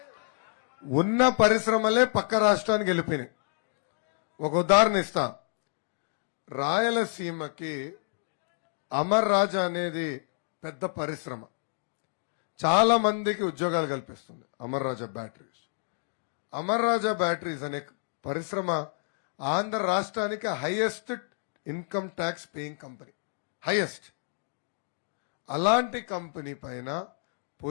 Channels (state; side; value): silent; right; 59 dB below the other